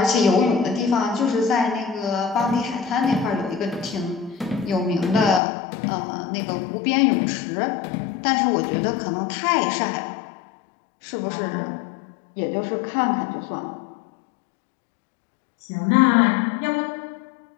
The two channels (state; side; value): drops out; right; at 5.4 s